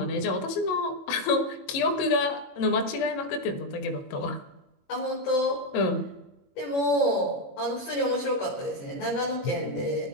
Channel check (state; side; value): late; right; 22 ms